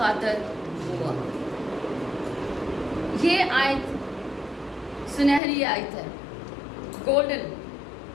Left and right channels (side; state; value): right; drops out; at 5.4 s